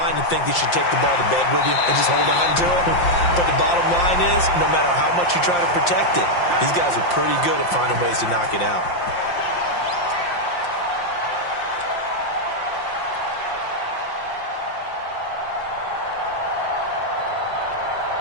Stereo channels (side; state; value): right; late; 5.7 ms